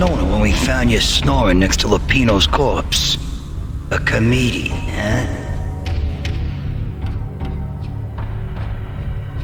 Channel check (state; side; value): identical; both; correlation 1.00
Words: it when we found you snoring next to Lupino's corpse. A comedian, huh?